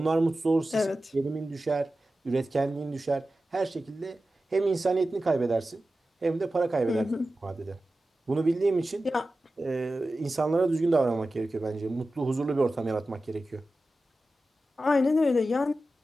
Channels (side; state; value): both; normal; correlation 0.94